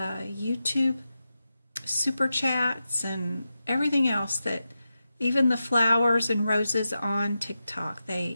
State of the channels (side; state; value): both; inverted; correlation -0.90